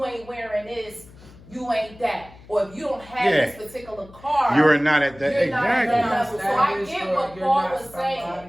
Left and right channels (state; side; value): noise; left; hum, 22 dB below the sound